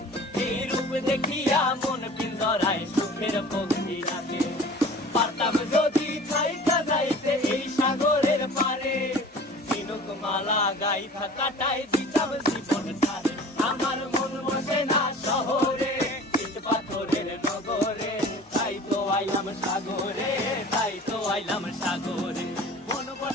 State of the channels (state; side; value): normal; both; correlation 0.43